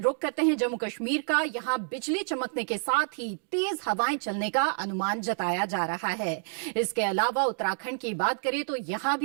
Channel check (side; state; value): left; silent; digital silence